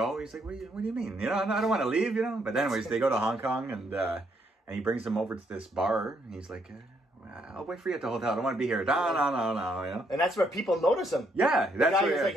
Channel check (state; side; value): normal; both; correlation 0.73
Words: He's like, what do you mean? I don't want to leave. But anyways, they go to Hong Kong and he brings them over to this bar. And he's like, I'll wait for you at the hotel. I don't want to be here. No. And that's where people notice him. Yeah, the guy was like,